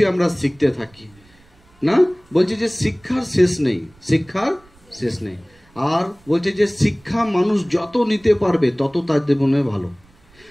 আমরা শিখতে থাকি, না? বলছে যে শিক্ষার শেষ নেই, শিক্ষার শেষ নেই। আর বলছে যে শিক্ষা মানুষ যত নিতে পারবে তত তার জীবনে ভালো,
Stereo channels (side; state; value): right; noise; rumble, 29 dB below the sound